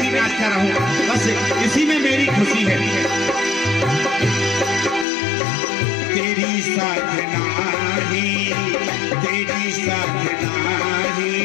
नाचता रहूं, बस इसी में मेरी खुशी है। तेरी साधना ही, तेरी साधना ही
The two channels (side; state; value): right; drops out; at 5.1 s